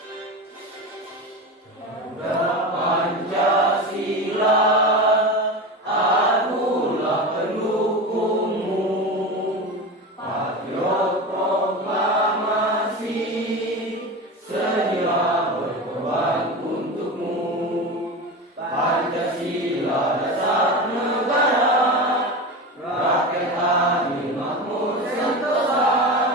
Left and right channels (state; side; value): normal; both; correlation 0.25